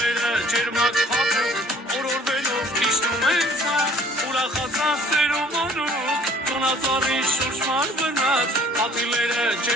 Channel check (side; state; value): both; normal; correlation 0.54